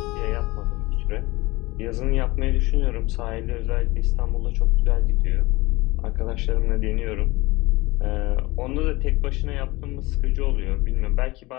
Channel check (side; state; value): right; quieter; 21.8 dB